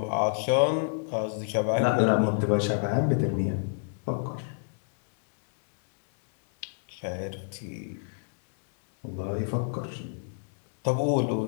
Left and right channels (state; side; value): silent; right; digital silence